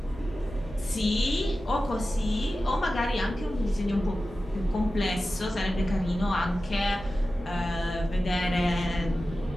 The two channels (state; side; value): normal; both; correlation 0.94